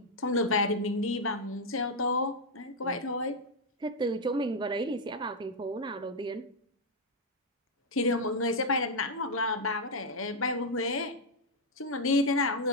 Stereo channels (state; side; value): normal; both; correlation 0.00